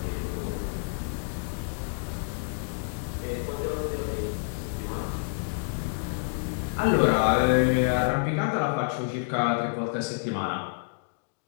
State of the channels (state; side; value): silent; right; digital silence